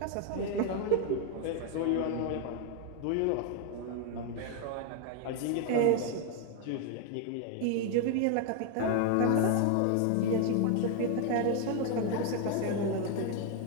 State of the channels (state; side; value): different; both; correlation 0.01